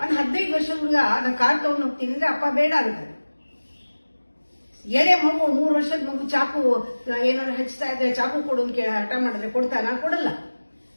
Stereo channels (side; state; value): both; inverted; correlation -1.00